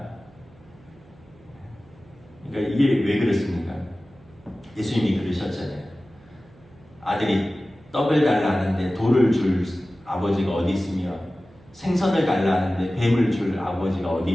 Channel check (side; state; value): right; noise; hum, 26 dB below the sound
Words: 그러니까 이게 왜 그렇습니까? 예수님이 그러셨잖아요. 아들이 떡을 달라는데 돌을 줄 아버지가 어디 있으며 생선을 달라는데 뱀을 줄 아버지가 어디